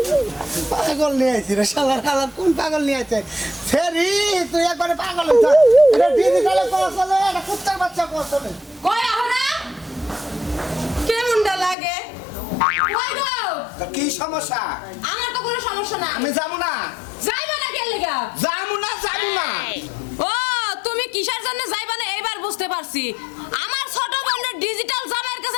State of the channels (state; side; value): drops out; right; at 11.8 s